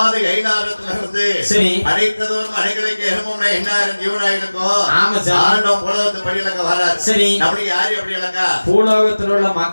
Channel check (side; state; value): both; inverted; correlation -1.00